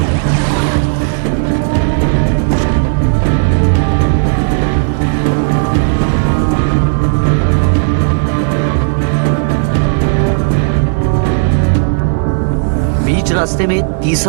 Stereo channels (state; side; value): silent; left; digital silence